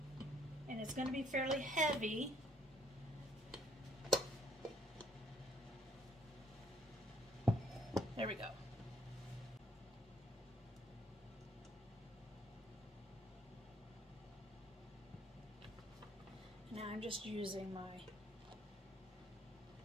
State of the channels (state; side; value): normal; both; correlation 0.66